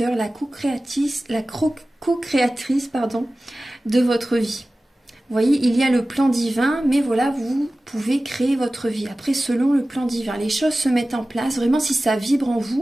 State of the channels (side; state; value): both; normal; correlation 0.96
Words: la co-créatrice de votre vie. Vous voyez, il y a le plan divin, mais voilà, vous pouvez créer votre vie. Après, selon le plan divin, les choses se mettent en place. Vraiment, si ça vibre en